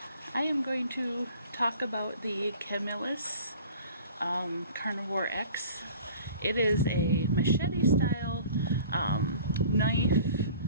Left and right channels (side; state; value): both; inverted; correlation -0.46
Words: I am going to talk about the Camillus Carnivore X. It is a machete style knife